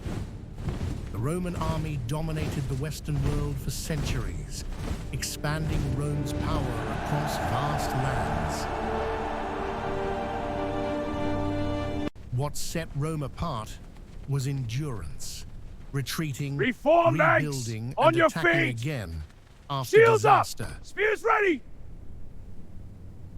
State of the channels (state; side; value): identical; both; correlation 1.00